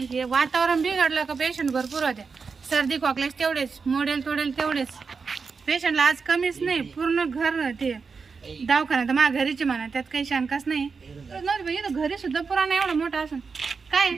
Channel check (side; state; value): left; quieter; 5.1 dB